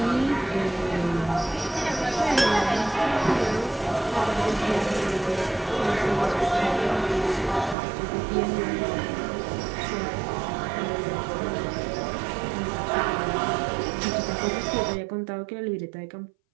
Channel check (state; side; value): drops out; left; at 7.8 s